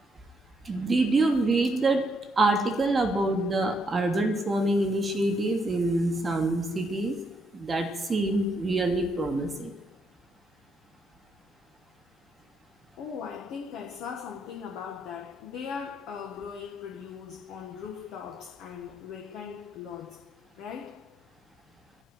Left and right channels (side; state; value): both; normal; correlation 0.76